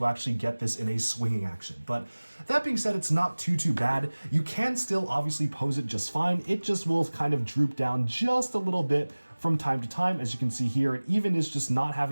actually get this in a swinging action. But that being said, it's not too bad. You can still obviously pose it just fine. It just will kind of droop down just a little bit from time to time. As you can see here, it even is just not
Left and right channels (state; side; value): inverted; both; correlation -1.00